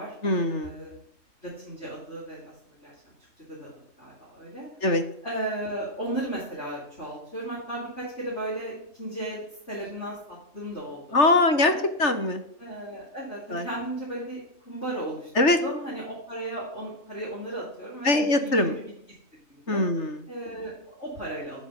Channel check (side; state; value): right; late; 3.3 ms